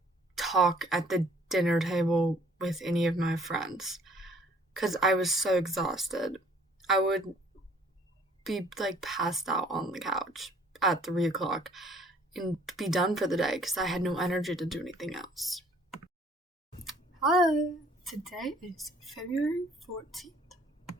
talk at the dinner table with any of my friends because I was so exhausted. I would be like passed out on the couch at 3 o'clock and be done for the day because I had no energy to do anything else. Hi, today is February 14th.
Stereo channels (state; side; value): normal; both; correlation 0.57